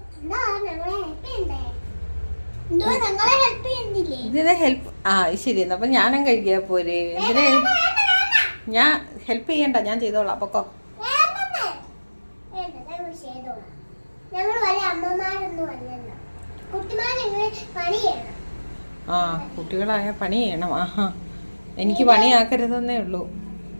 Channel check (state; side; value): inverted; both; correlation -1.00